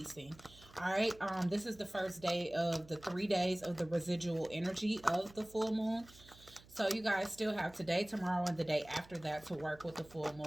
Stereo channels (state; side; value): noise; right; hum, 23 dB below the sound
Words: All right, this is the first day of the 3 days of the residual energy of the full moon. So you guys still have today, tomorrow, and the day after that to work with the full